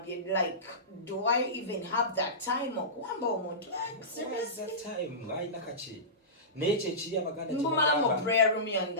like do I even have that time okuwamba omuntu? Seriously, that time ayina kaki. Naye ekiri abaganda mbumala mu prayer room yange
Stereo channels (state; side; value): normal; both; correlation -0.20